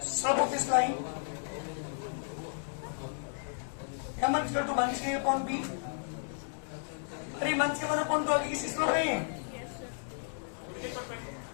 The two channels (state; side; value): silent; right; digital silence